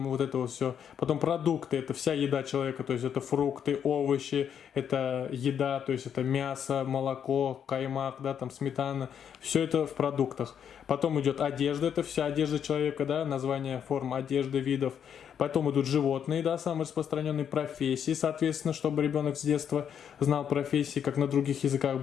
вот это вот все. Потом продукты, это вся еда человека, то есть это фрукты, овощи, это еда, то есть это мясо, молоко, каймак, да, там сметана, все это в продуктах. Потом идет одежда, это вся одежда человека, да, название форм одежды, видов. Потом идут животные, да, самые распространенные профессии, соответственно, чтобы ребенок с детства знал профессии, как на других языках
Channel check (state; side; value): quieter; right; 8.4 dB